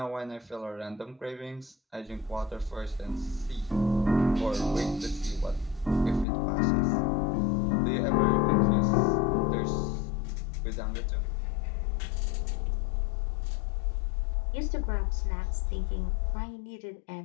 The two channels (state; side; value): drops out; right; at 6.2 s